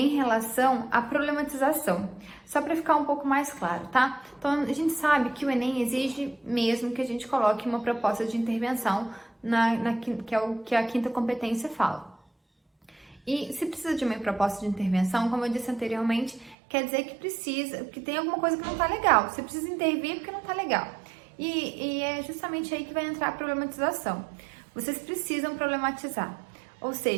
relação à problematização, só para ficar um pouco mais claro, tá? Então, a gente sabe que o Enem exige mesmo que a gente coloque uma proposta de intervenção que é o que a quinta competência fala. E se precisa de uma proposta de intervenção, como eu disse anteriormente, quer dizer que tem alguma coisa que não tá legal. Você precisa intervir porque não tá legal. E é justamente aí que vai entrar a problematização. Vocês precisam problematizar. Ou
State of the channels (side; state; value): left; drops out; at 16.6 s